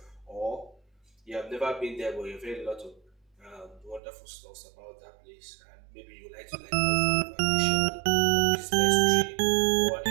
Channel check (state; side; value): drops out; left; at 4.0 s